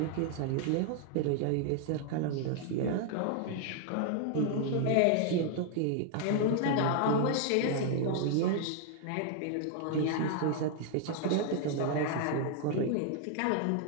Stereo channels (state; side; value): different; both; correlation 0.00